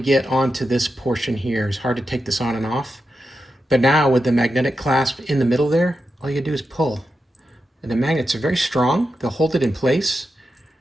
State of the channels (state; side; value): normal; both; correlation 0.88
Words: onto this portion here. It's hard to take this on and off. But now with the magnetic clasp in the middle there, all you do is pull. And the magnets are very strong. They'll hold it in place.